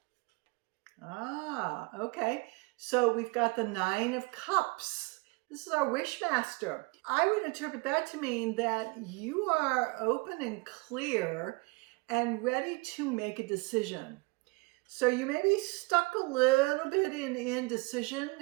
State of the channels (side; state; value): left; quieter; 27.2 dB